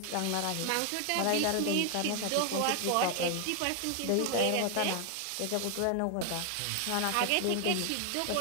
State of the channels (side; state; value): both; different; correlation 0.00